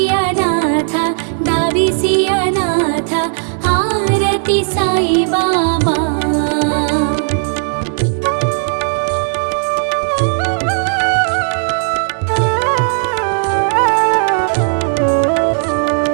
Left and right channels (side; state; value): left; silent; 61 dB below the other